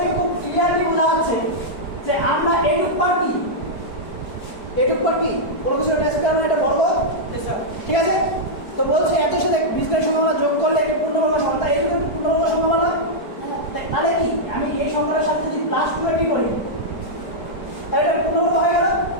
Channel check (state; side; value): late; right; 4.8 ms